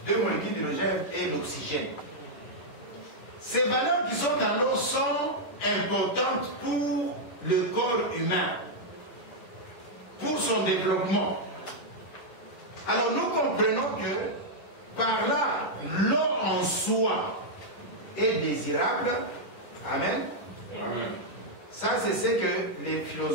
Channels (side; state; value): right; late; 10 ms